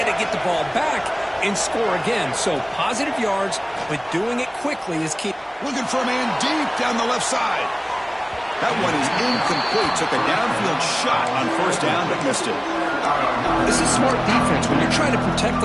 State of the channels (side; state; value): both; identical; correlation 1.00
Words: to get the ball back and score again. So positive yards, but doing it quickly is key. Looking for a man deep down the left side. That one is incomplete. Took a downfield shot on 1st down, but missed it. This is smart defense. When you're trying to protect